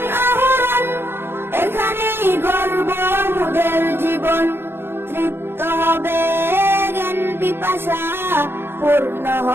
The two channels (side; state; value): left; late; 0.11 ms